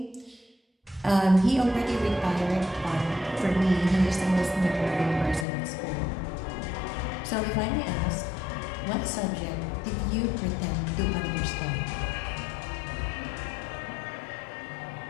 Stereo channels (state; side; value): drops out; right; at 5.5 s